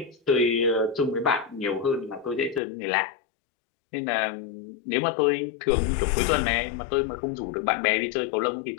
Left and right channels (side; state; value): right; drops out; at 2.6 s